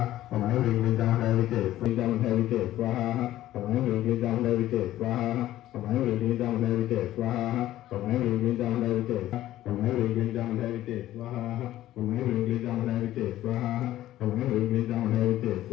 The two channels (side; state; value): right; quieter; 14.1 dB